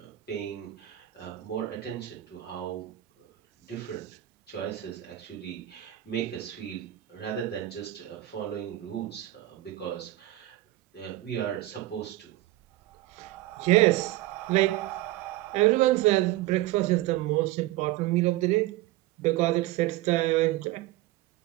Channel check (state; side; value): quieter; left; 16.4 dB